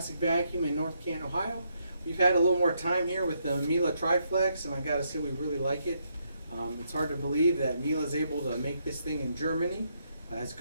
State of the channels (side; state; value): both; inverted; correlation -0.77